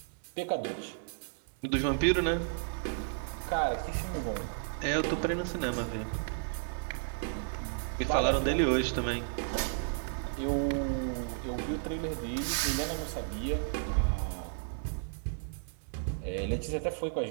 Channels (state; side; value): silent; left; 56 dB below the other